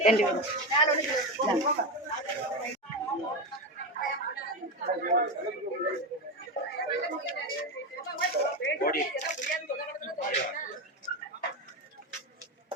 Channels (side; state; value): both; normal; correlation 0.15